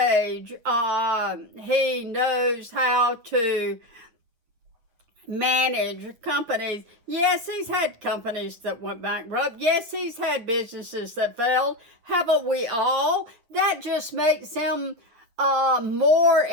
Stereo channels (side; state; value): left; late; 8.7 ms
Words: He knows how to manage companies. Yes, he's had companies that went bankrupt. Yes, he's had businesses that failed. Haven't we all? That just makes him more